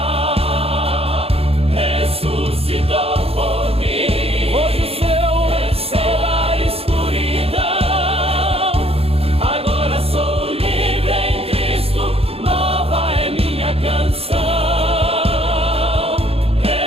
Ressuscitou por mim. Hoje o céu será escuridão. Agora sou livre em Cristo, nova é minha canção.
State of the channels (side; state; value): left; late; 0.28 ms